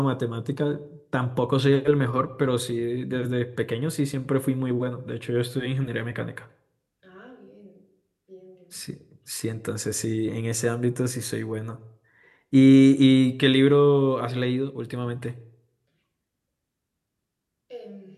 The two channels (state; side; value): identical; both; correlation 1.00